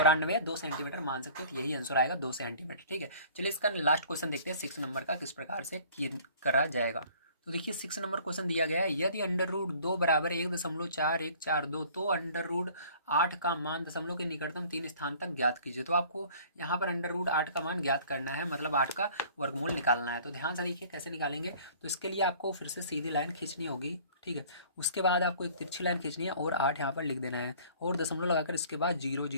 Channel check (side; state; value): both; inverted; correlation -0.51